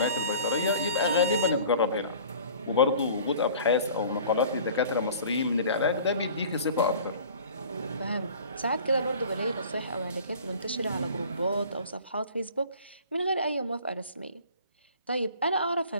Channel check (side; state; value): both; inverted; correlation -0.46